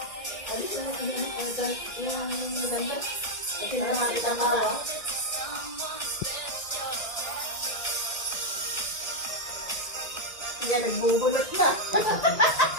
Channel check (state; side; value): late; right; 1.9 ms